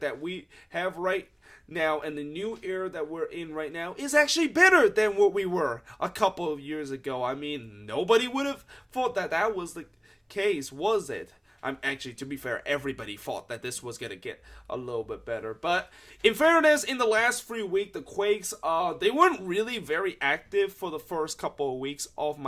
that we have right now, and the new era that we're in right now, is actually better than what we were a couple of years ago? I mean, nobody would have thought that was the case, was it? I'm actually, to be fair, everybody thought that this was gonna get a little bit better. But in fairness, in the last 3 weeks, the Quakes, they weren't really very active for the first couple of weeks of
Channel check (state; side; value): identical; both; correlation 1.00